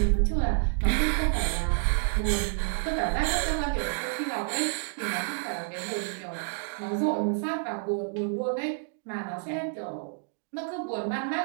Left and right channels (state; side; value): silent; left; digital silence